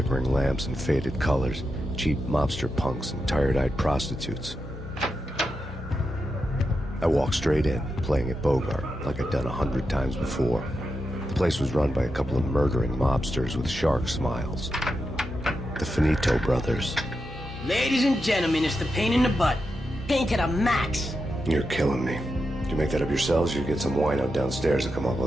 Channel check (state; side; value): normal; both; correlation 0.87